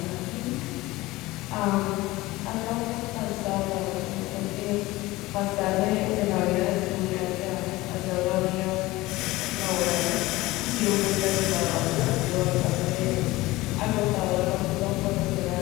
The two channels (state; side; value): quieter; right; 19.4 dB